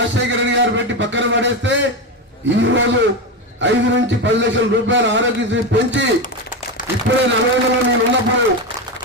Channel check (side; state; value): both; normal; correlation 0.15